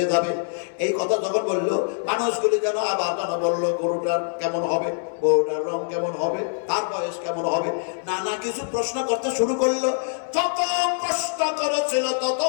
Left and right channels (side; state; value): right; silent; digital silence